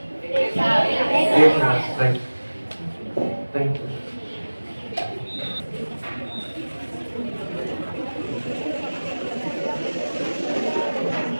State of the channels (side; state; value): both; inverted; correlation -1.00